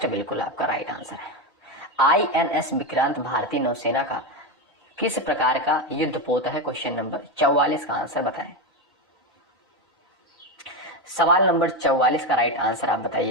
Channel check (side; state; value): both; normal; correlation 0.12